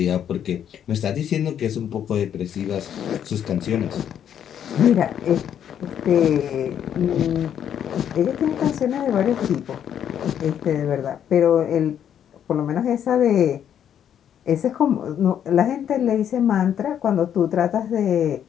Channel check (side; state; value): right; quieter; 9.4 dB